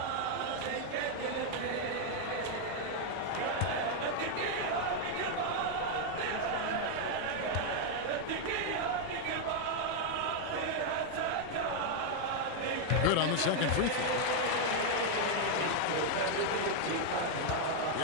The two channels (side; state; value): both; different; correlation 0.00